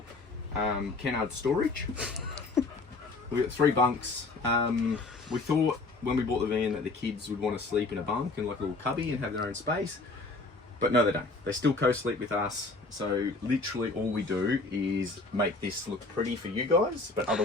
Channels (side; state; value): right; quieter; 3.5 dB